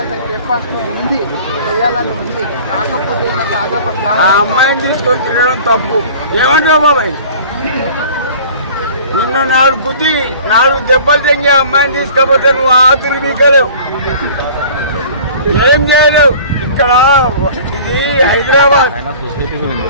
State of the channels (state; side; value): inverted; both; correlation -0.45